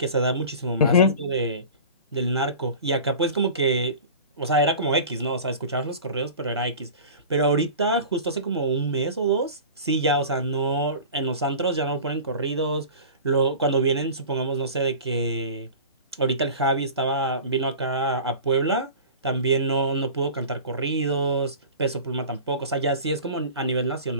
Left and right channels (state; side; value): inverted; both; correlation -0.37